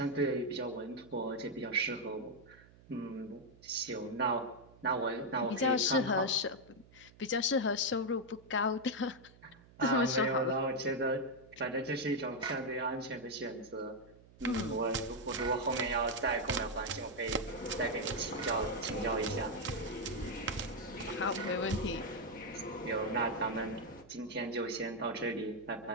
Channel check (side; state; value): right; noise; hum, 24 dB below the sound